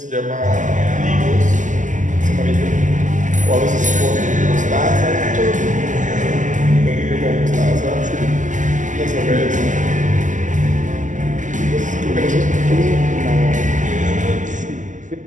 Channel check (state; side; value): late; left; 0.37 ms